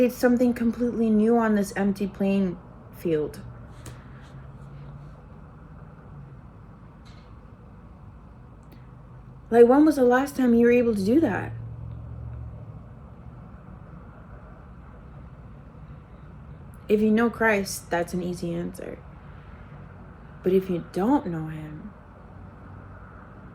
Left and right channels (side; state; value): both; identical; correlation 1.00